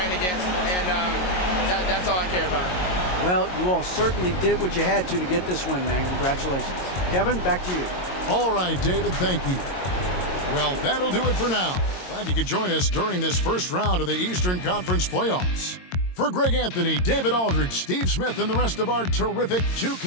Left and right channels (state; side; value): late; right; 22 ms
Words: against, and that's all I care about. Well, you all certainly did what you had to get this win, man. Congratulations. Kevin, back to you. All right, David, thank you. Well, that'll do it for now. Glad you could join us during this first round of the Eastern Conference playoffs. For Greg Anthony, David Aldridge, Steve Smith, and the rest of our terrific